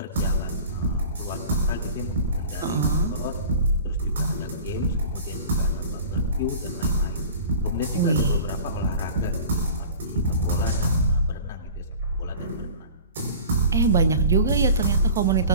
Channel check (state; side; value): inverted; both; correlation -0.40